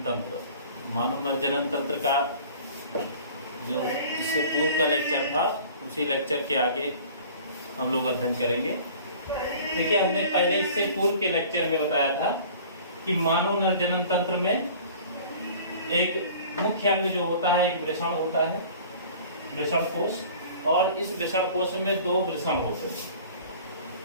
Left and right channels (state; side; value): inverted; both; correlation -0.46